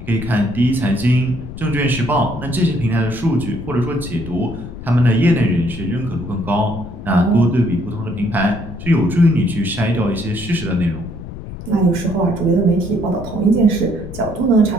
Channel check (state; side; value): noise; left; rumble, 11 dB below the sound